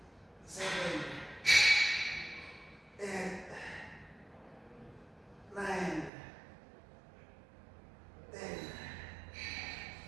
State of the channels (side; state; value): left; drops out; at 6.1 s